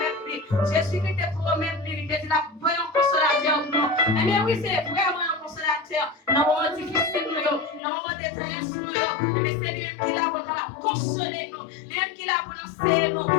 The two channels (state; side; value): drops out; right; at 7.8 s